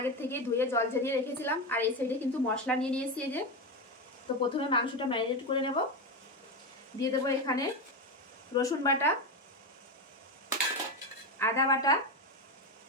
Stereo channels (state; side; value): normal; both; correlation 0.15